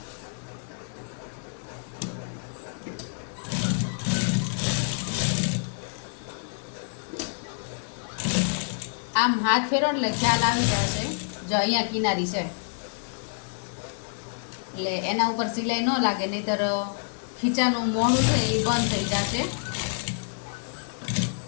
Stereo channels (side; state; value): right; silent; 60 dB below the other